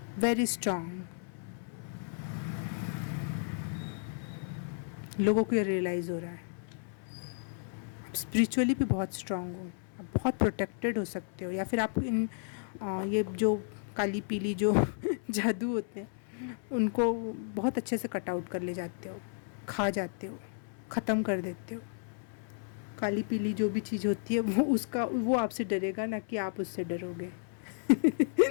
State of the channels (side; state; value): right; silent; 56 dB below the other